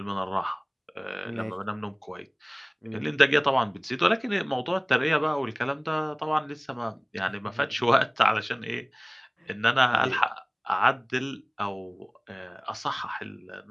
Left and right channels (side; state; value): both; identical; correlation 1.00